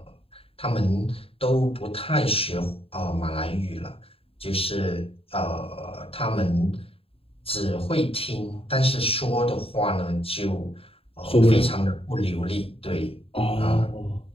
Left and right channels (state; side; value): late; right; 0.27 ms